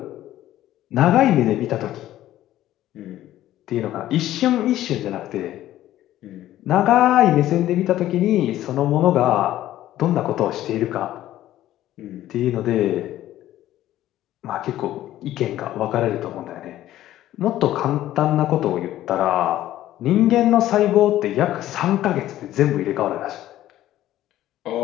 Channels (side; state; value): right; quieter; 13.7 dB